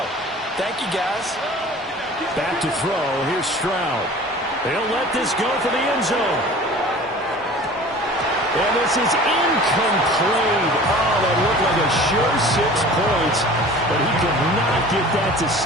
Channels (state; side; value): normal; both; correlation 0.43